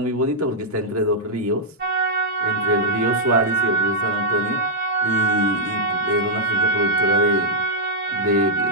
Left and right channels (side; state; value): both; normal; correlation -0.07